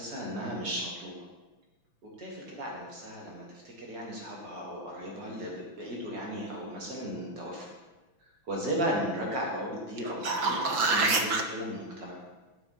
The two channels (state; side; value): late; left; 6.0 ms